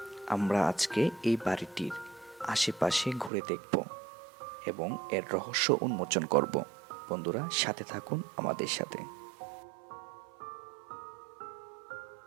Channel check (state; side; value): drops out; left; at 3.3 s